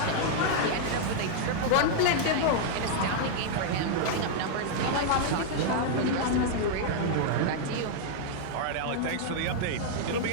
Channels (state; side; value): different; both; correlation -0.01